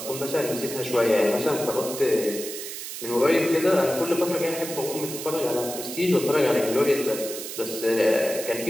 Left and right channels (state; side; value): noise; right; hiss, 8 dB below the sound